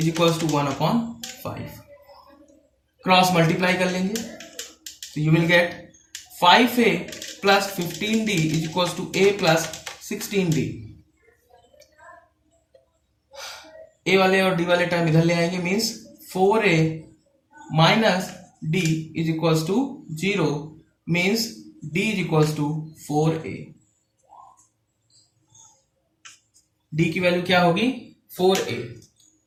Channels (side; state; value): both; identical; correlation 1.00